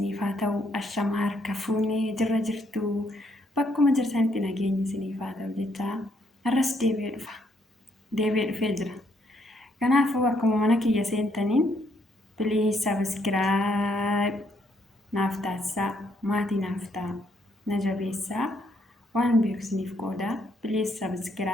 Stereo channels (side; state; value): both; normal; correlation 0.72